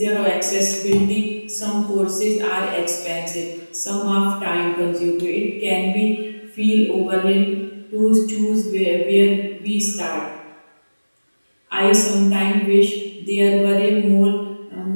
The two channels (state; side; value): inverted; both; correlation -1.00